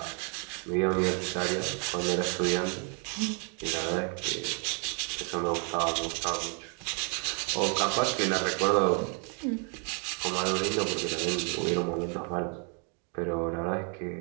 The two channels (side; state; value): left; quieter; 39.4 dB